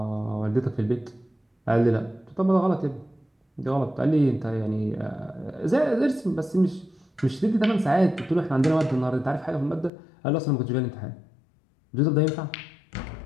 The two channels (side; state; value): right; drops out; at 9.9 s